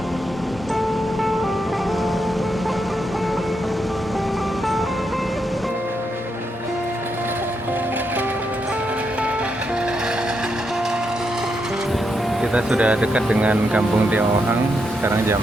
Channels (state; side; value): normal; both; correlation 0.81